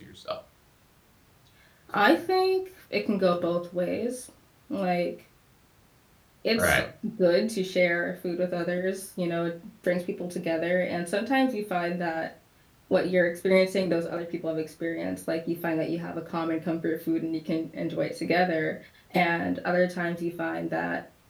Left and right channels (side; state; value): both; identical; correlation 1.00